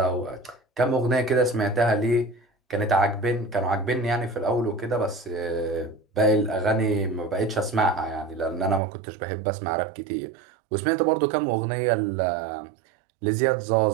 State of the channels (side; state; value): left; drops out; at 8.8 s